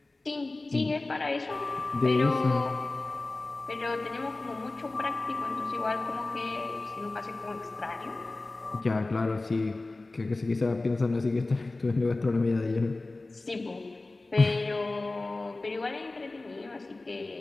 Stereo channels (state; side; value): quieter; right; 3.1 dB